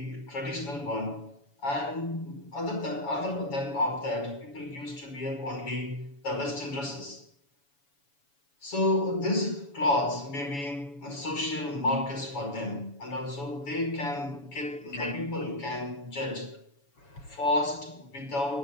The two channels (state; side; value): late; right; 7.1 ms